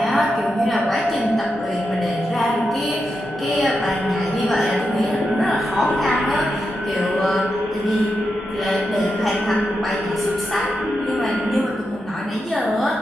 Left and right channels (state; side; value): normal; both; correlation 0.87